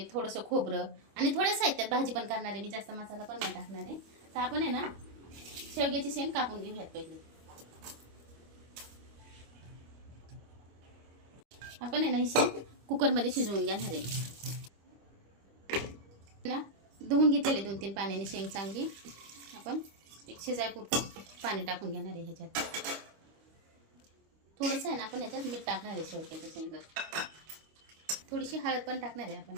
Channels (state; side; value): late; left; 25 ms